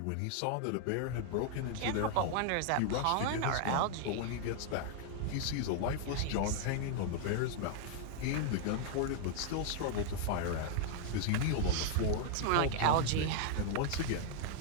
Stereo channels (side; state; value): both; different; correlation 0.00